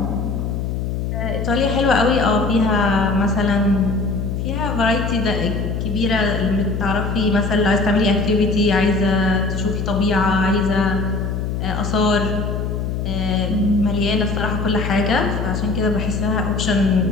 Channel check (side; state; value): left; noise; hum, 2 dB below the sound